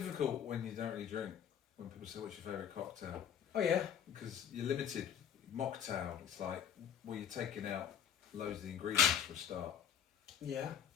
when you don't really drink, when people say what's your favourite cocktail. Oh yeah. Because you're limited. Mocktail, it's like, well, you're taking out loads of the ingredients for a start. Yeah.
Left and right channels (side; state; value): right; quieter; 8.9 dB